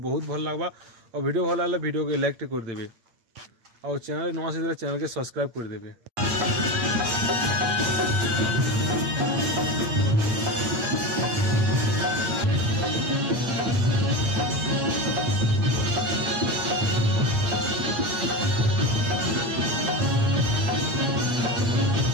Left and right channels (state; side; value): late; left; 8.8 ms